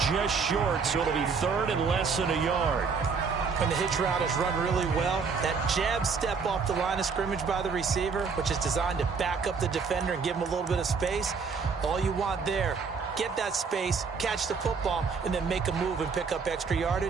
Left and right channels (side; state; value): left; quieter; 5.4 dB